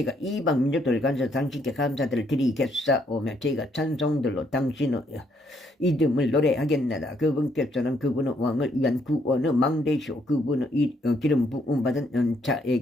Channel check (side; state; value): both; normal; correlation 0.71